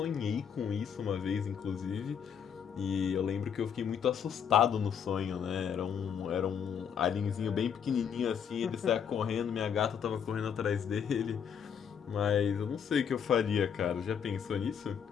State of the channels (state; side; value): quieter; right; 7.7 dB